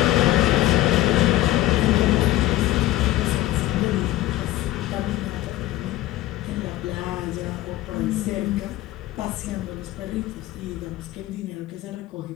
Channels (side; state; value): right; quieter; 15.8 dB